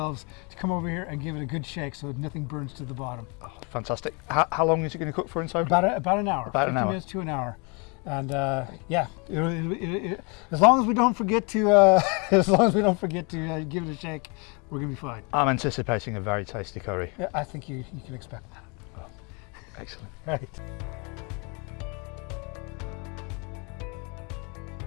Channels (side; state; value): right; quieter; 32.2 dB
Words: to come over here and give it a good shake so nothing burns to the bottom. Oh, fantastic. How long is it going to cook for inside? About an hour. About an hour. 50 minutes to an hour. And as long as we don't forget to give it a shake, we're gonna be fine. I'm anticipating a very tasty curry. Yeah, I think you can expect that. Oh, excellent. Right.